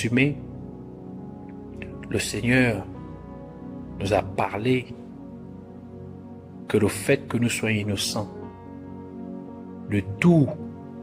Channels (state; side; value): identical; both; correlation 1.00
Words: le Seigneur nous a parlé que le fait que nous soyons innocents de tout